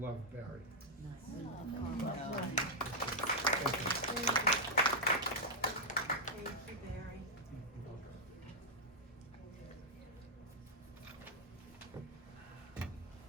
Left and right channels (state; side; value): normal; both; correlation -0.05